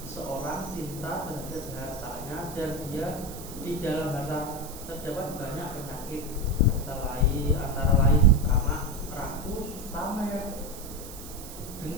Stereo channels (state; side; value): noise; right; hiss, 14 dB below the sound